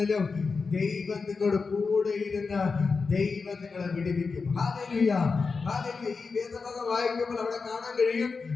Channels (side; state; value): right; quieter; 4.7 dB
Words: ദൈവം നിങ്ങളുടെ കൂടെ ഇരുന്ന് ദൈവം നിങ്ങളെ വിടുവിക്കും. Hallelujah, hallelujah. ഈ വേദഭാഗം വായിക്കുമ്പോൾ അവിടെ കാണാൻ കഴിയും,